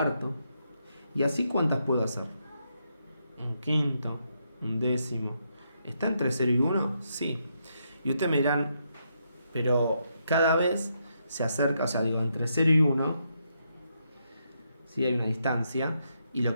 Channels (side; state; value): both; inverted; correlation -0.79